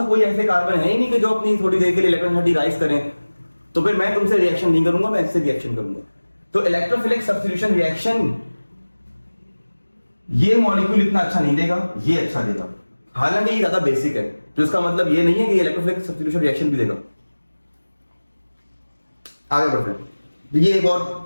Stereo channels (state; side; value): inverted; both; correlation -1.00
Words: कोई ऐसे कार्बन है ही नहीं कि जो अपनी थोड़ी देर के लिए इलेक्ट्रॉनिटी राइज करें, तो फिर मैं तुमसे रिएक्शन नहीं करूंगा, मैं इससे रिएक्शन करूंगा। तो इलेक्ट्रोफिलिक सब्स्टिट्यूशन रिएक्शन ये मॉलिक्यूल इतना अच्छा नहीं देगा, ये अच्छा देगा। हालांकि ये ज्यादा बेसिक है, तो इसका मतलब ये नहीं है कि इलेक्ट्रोफिलिक सब्स्टिट्यूशन रिएक्शन भी देगा। आगे बढ़ते हैं,